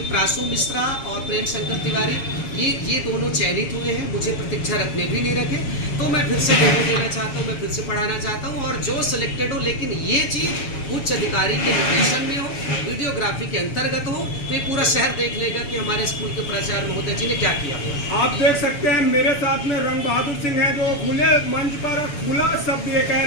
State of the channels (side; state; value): right; late; 7.0 ms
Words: प्रासू मिश्रा और प्रेम शंकर तिवारी ये दोनों चयनित हुए हैं, मुझे प्रतीक्षा रखने भी नहीं रखे, तो मैं फिर से डेमो देना चाहता हूँ, मैं फिर से पढ़ाना चाहता हूँ। और जो सिलेक्टेड हो, लेकिन ये चीज़ उच्च अधिकारी के निर्देशन में हो, वीडियोग्राफी के अंतर्गत हो, तो ये पूरा शहर देख लेगा कि हमारे स्कूल के प्राचार्य महोदय जी ने क्या किया हुआ। आप देख सकते हैं मेरे साथ में रंग बहादुर सिंह है, जो खुले मंच पर खुला शब्द ये कह